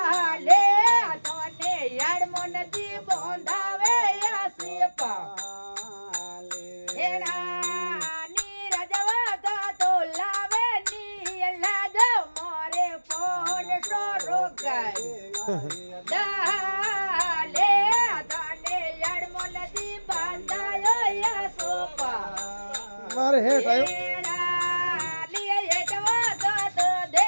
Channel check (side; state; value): both; inverted; correlation -1.00